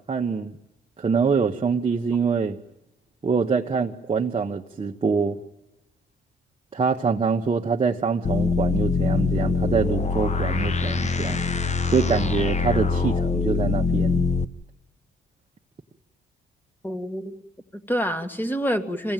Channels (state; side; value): normal; both; correlation 0.60